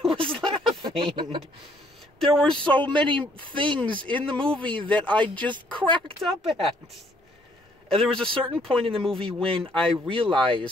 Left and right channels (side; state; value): both; normal; correlation 0.65